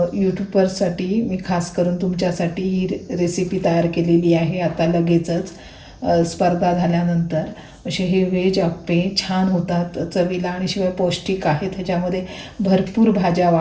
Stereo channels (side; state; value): both; identical; correlation 1.00